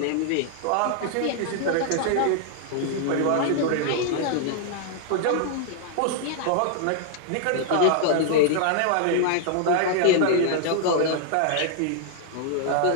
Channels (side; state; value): both; different; correlation 0.00